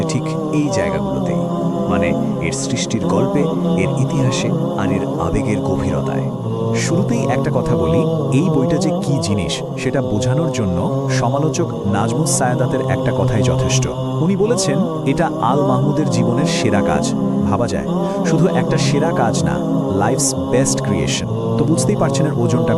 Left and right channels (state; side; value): identical; both; correlation 1.00